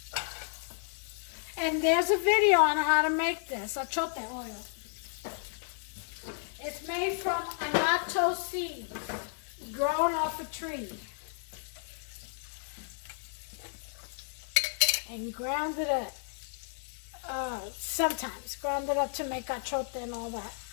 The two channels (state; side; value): silent; right; 56 dB below the other